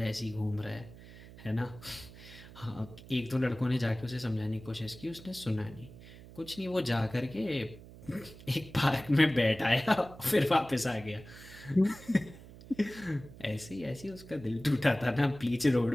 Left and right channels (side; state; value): right; noise; hum, 18 dB below the sound